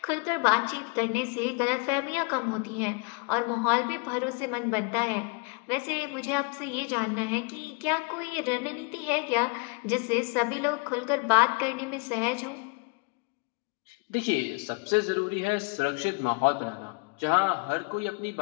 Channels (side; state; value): right; quieter; 31.5 dB